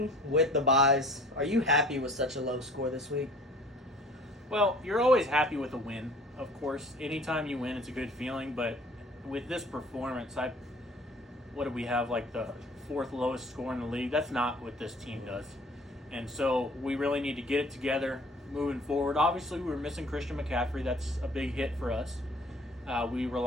with the buys, are you happy with such a low score this week? Well, you're always happy with a win, of course. Anytime you win, it's a good feeling. But with this performance, what do we have, like the fourth lowest score in the league? That's not what this team does. And so we really need to get it together moving forward. Obviously, we were missing Christian McCaffrey. That's a big hit for us. We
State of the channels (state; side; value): normal; both; correlation 0.50